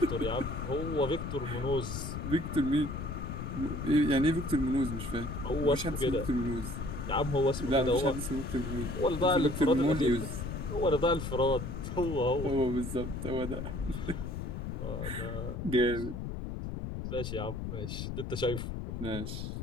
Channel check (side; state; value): left; noise; rumble, 5 dB below the sound